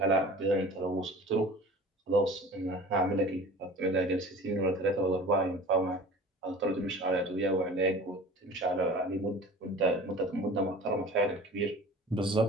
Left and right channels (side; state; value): both; normal; correlation 0.41